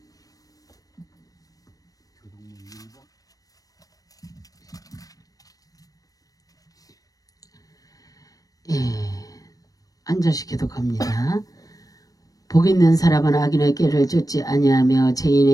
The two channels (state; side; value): late; right; 0.18 ms